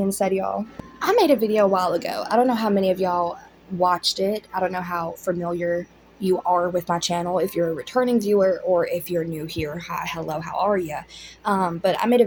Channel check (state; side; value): identical; both; correlation 1.00